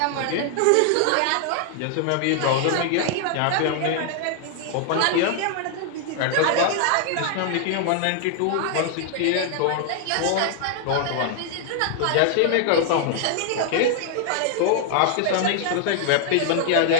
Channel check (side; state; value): both; different; correlation 0.00